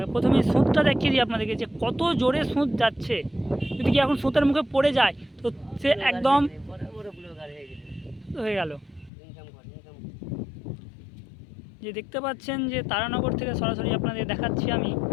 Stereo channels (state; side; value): drops out; right; at 9.1 s